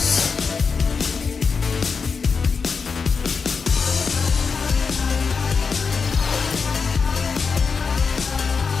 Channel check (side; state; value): right; quieter; 5.3 dB